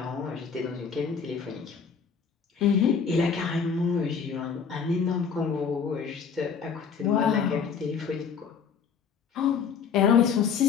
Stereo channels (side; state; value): right; quieter; 6.4 dB